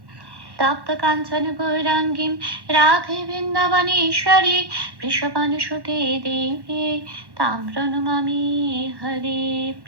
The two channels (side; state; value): left; late; 1.1 ms